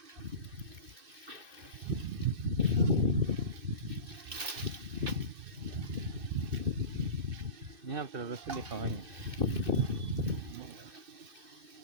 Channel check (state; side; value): late; left; 2.6 ms